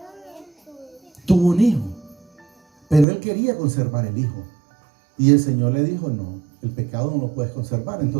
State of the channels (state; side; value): drops out; left; at 3.1 s